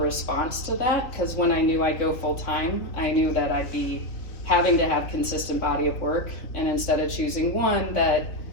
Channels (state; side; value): late; right; 3.2 ms